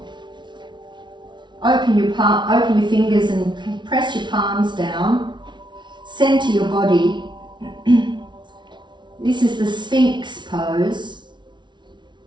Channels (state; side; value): late; left; 0.23 ms